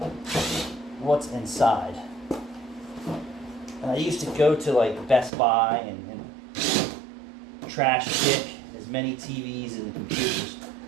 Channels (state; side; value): drops out; left; at 5.3 s